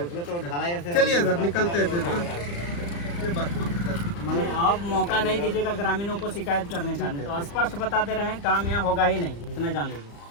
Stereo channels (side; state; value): right; late; 35 ms